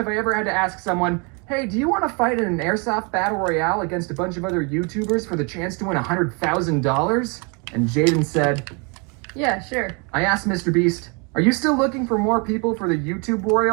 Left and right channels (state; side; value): quieter; left; 32.8 dB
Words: I ever had to ask someone, hey, do you want to fight in an airsoft battle royale against a bunch of other YouTubers for the chance to win $100,000? And Jaden said, Yeah, sure. I asked Mr. Beast, are you still looking for more people for the YouTube